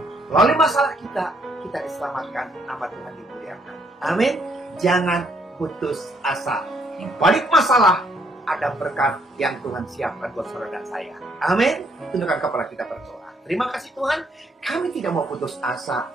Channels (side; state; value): both; normal; correlation 0.69